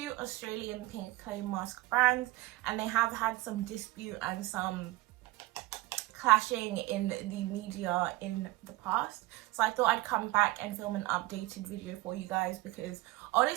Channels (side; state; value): left; quieter; 19.6 dB